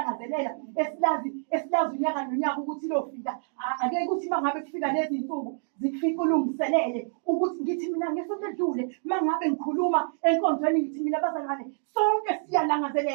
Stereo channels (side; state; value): left; silent; 60 dB below the other